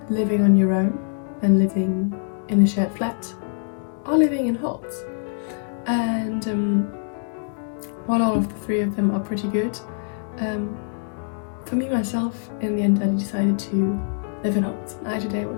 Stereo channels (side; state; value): right; silent; digital silence